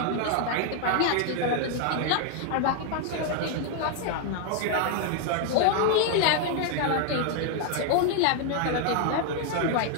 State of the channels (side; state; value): both; different; correlation 0.00